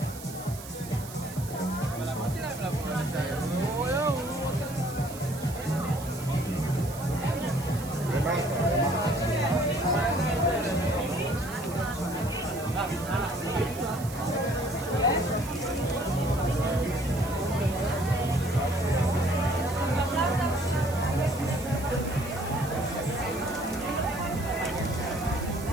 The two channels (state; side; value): noise; right; hiss, 15 dB below the sound